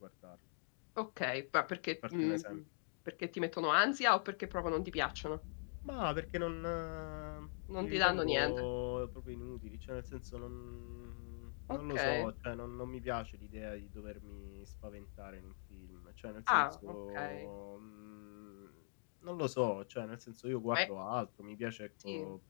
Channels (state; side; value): silent; right; digital silence